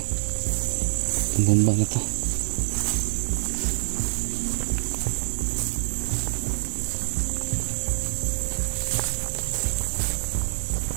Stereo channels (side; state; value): left; silent; 61 dB below the other